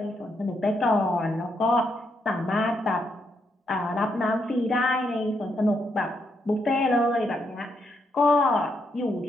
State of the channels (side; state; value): both; normal; correlation 0.78